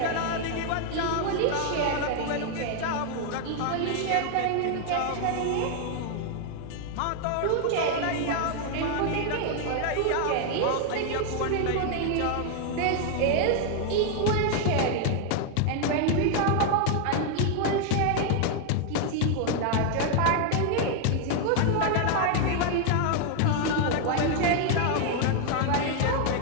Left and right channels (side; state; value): both; different; correlation 0.00